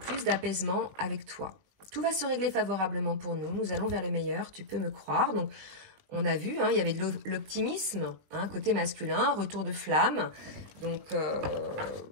d'apaisement avec toi. Tout va se régler favorablement pour nous. Nous allons vers le meilleur, tu peux me croire. Donc, on a vu, hein, il y avait de l'optimisme, hein, côté masculin, retour de flamme. Donc,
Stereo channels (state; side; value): late; left; 20 ms